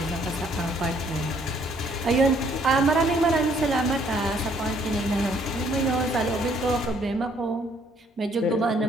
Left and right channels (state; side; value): normal; both; correlation 0.65